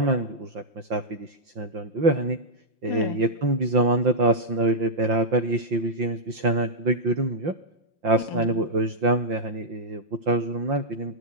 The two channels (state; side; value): late; left; 5.8 ms